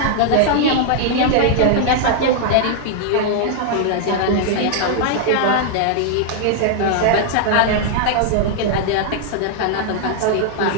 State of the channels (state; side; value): different; both; correlation 0.00